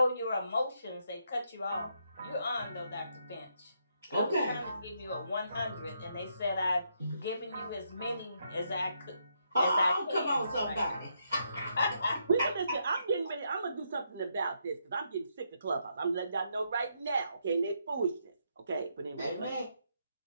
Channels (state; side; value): inverted; both; correlation -0.77